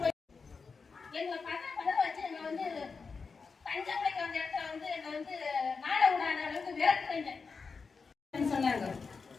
போய் எங்களை பதவி வச்சு எங்க வந்து தஞ்சாவூருக்கு வந்த இடத்துல வந்து என்னை வந்து நாட விடாத அளவுக்கு விரட்டுறீங்க சொன்னாங்க.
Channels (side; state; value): right; quieter; 4.9 dB